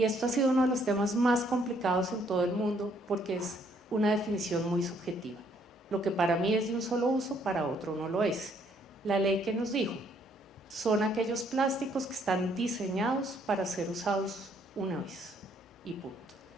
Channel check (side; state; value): both; normal; correlation 0.67